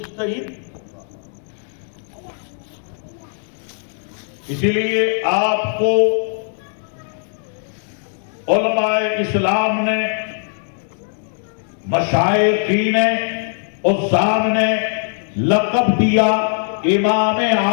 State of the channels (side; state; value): right; silent; digital silence